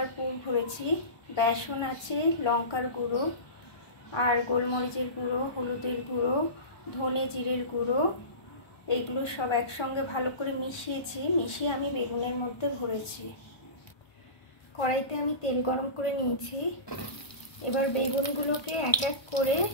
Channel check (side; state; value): right; late; 1.2 ms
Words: পুর ভরেছি। বেসন আছে, লঙ্কার গুঁড়ো আর গোলমরিচের গুঁড়ো, হলুদের গুঁড়ো, ধনে জিরের গুঁড়ো, এইগুলো সব একসঙ্গে ভালো করে মিশিয়ে আমি বেগুনের মধ্যে ভরেছি। কড়াইতে আমি তেল গরম করে নিয়েছি। এবার বেগুনগুলোকে এক এক করে